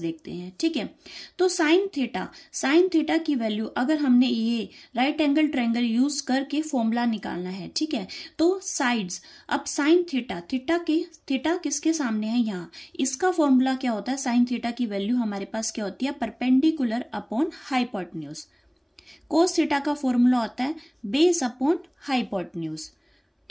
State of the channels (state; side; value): identical; both; correlation 1.00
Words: देखते हैं। ठीक है, तो साइन थीटा की वैल्यू अगर हमने ये राइट एंगल ट्रायंगल यूज करके फॉर्मूला निकालना है, ठीक है, तो साइड्स, अब साइन थीटा किसके सामने है यहाँ, इसका फॉर्मूला क्या होता है साइन थीटा की वैल्यू हमारे पास क्या होती है perpendicular upon hypotenuse. Cos theta का फॉर्मूला होता है बेस अपॉन हाइपोटेन्यूज।